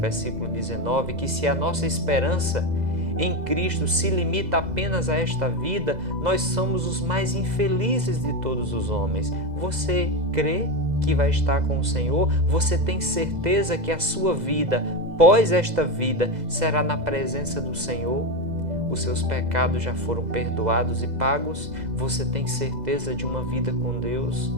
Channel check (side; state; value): left; late; 2.0 ms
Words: 19, que se a nossa esperança em Cristo se limita apenas a esta vida, nós somos os mais infelizes de todos os homens. Você crê que vai estar com o Senhor? Você tem certeza que a sua vida, pós esta vida, será na presença do Senhor? Os seus pecados já foram perdoados e pagos? Você tem certeza de uma vida com Deus?